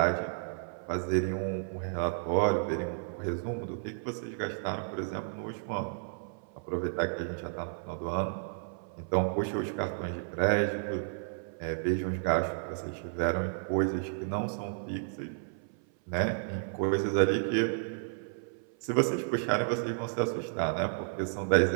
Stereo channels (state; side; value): silent; left; 56 dB below the other